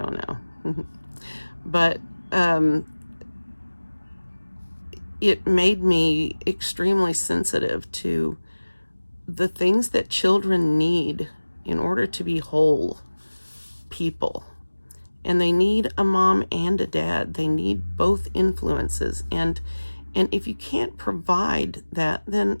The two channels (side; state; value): both; inverted; correlation -1.00